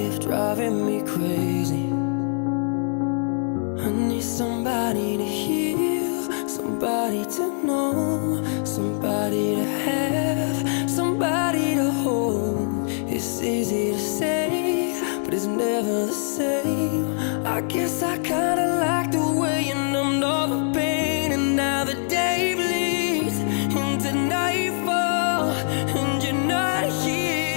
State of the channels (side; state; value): right; silent; 62 dB below the other